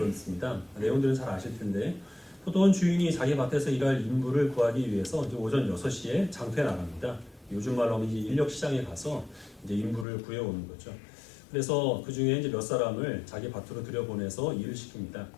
내용들은 잘 아실 텐데 포도원 주인이 자기 밭에서 일할 인부를 구하기 위해서 이제 오전 6시에 장터에 나갑니다. 요즘 말로 하면 이제 인력 시장에 가서 이제 인부를 구해오는 거죠. 그래서 그 중에 이제 몇 사람을 자기 밭으로 들여보내서 일을 시킵니다.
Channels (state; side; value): drops out; right; at 10.1 s